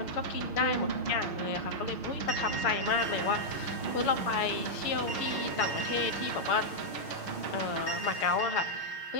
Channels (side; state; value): right; late; 6.4 ms